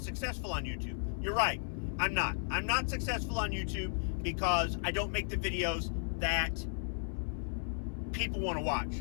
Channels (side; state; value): right; silent; 55 dB below the other